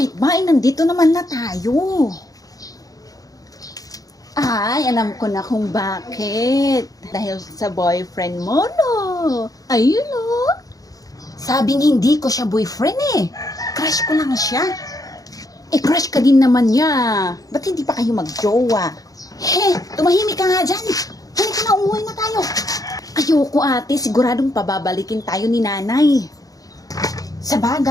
ba? Nandito naman na tayo. Ay, alam ko na kung bakit. Dahil sa boyfriend mo, no? Ayun, no? Sabing hindi ko siya boyfriend eh. Crush ko lang siya. Eh, crush ka din naman niya. Ba't hindi pa kayo magjowa? Tumahimik ka nga dyan. Halika na, umuwi na tayo. Ayoko, ate. Siguradong pababalikin tayo ni nanay. Sa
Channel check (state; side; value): late; right; 0.17 ms